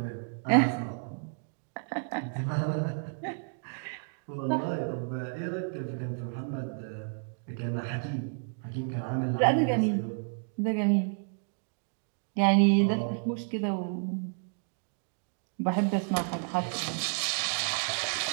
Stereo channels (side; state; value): left; silent; 57 dB below the other